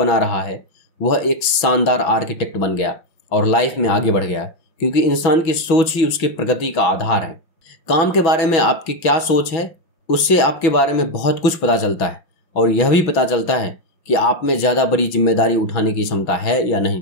रहा है, वह एक शानदार आर्किटेक्ट बन गया और लाइफ में आगे बढ़ गया, क्योंकि इंसान की सोच ही उसकी प्रगति का आधार है। काम के बारे में आपकी क्या सोच है, उससे आपके बारे में बहुत कुछ पता चलता है, और यह भी पता चलता है कि आप में ज़्यादा बड़ी जिम्मेदारी उठाने की क्षमता है या नहीं।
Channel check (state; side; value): late; right; 6.1 ms